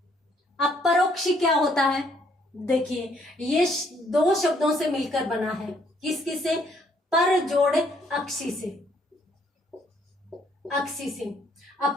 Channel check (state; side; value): normal; both; correlation 0.67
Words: अब परोक्षी क्या होता है? देखिए ये दो शब्दों से मिलकर बना है। किस किस से? पर जोड़ अक्षी से, अक्षी से।